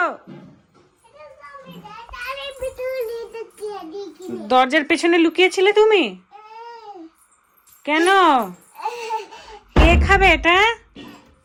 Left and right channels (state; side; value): identical; both; correlation 1.00